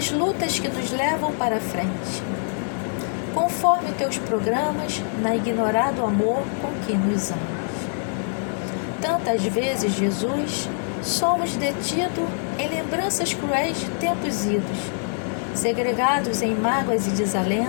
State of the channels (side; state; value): right; silent; digital silence